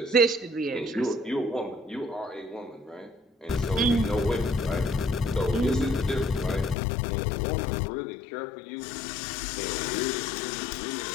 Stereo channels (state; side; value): drops out; right; at 6.8 s